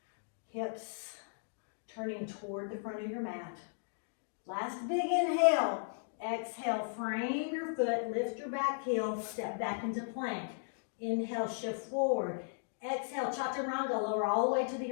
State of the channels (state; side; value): silent; right; digital silence